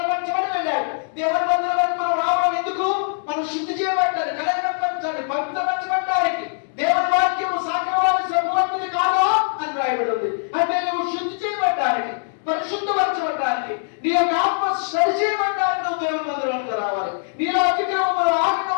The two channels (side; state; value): right; silent; digital silence